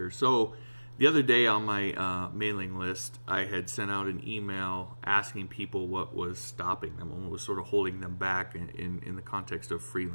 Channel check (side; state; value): both; inverted; correlation -1.00